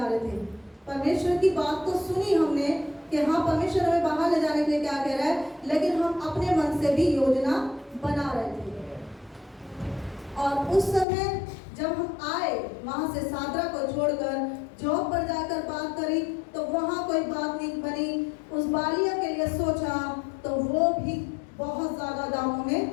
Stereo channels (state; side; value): drops out; right; at 11.1 s